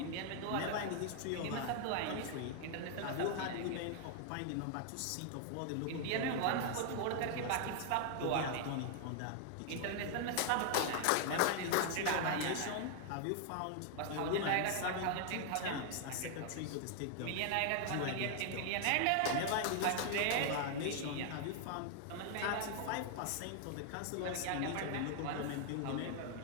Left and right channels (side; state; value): both; different; correlation 0.00